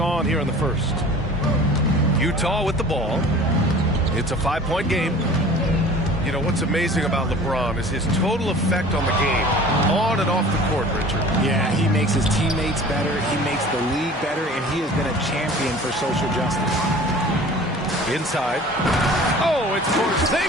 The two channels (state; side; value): normal; both; correlation 0.44